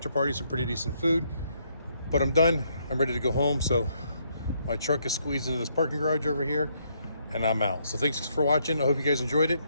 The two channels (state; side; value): inverted; both; correlation -0.73